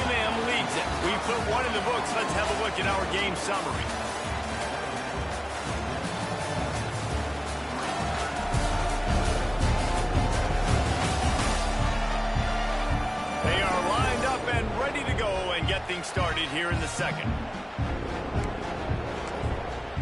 leads it. We put one in the books. Let's have a look at our game summary. They are lined up and ready to go and get things started here in the second.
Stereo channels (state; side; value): identical; both; correlation 1.00